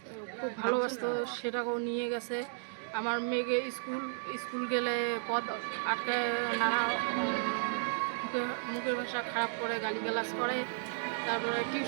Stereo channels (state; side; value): silent; left; digital silence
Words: খুব ভালোবাসতো, সেটাকেও নিয়ে গেছে। আমার মেয়েকে স্কুল গেলে পথ আটকায়, নানা মুখের ভাষা খারাপ করে, গালিগালাজ করে। তারপরে